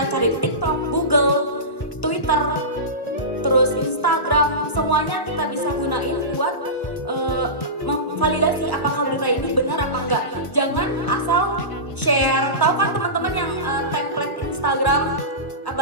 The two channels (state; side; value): late; right; 1.2 ms